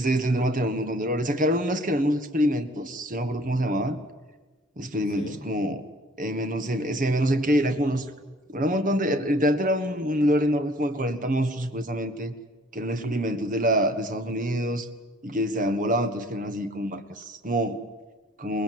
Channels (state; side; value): normal; both; correlation 0.55